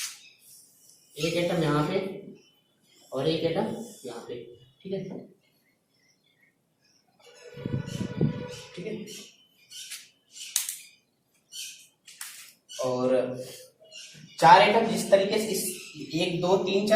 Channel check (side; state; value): both; identical; correlation 1.00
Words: एक एटम यहाँ पे और एक एटम यहाँ पे। ठीक है, ठीक है, और 4 एटम जिस तरीके से इस 1 2 3